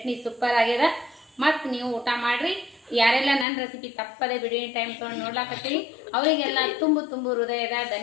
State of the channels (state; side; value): drops out; right; at 3.5 s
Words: ಸೂಪರ್ ಆಗ್ಯದ. ಮತ್ತು ನೀವು ಊಟ ಮಾಡಿರಿ. ಯಾರೆಲ್ಲ ನನ್ನ ರೆಸಿಪಿ ತಪ್ಪದೆ ಬಿಡುವಿನ ಟೈಮ್ ತೊಗೊಂಡು ನೋಡ್ಲಾಕತ್ತೀರಿ ಅವರಿಗೆಲ್ಲ ತುಂಬು ಹೃದಯದ